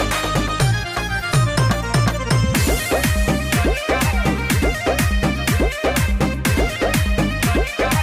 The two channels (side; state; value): both; identical; correlation 1.00